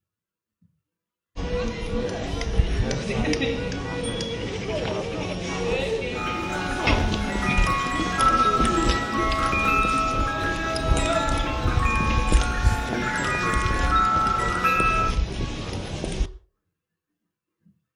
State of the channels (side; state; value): both; identical; correlation 1.00